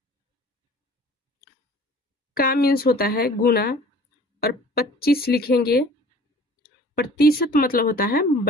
का मीन्स होता है गुना, और 25 लिखेंगे। प्रतिशत मतलब होता है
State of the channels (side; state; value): both; normal; correlation 0.48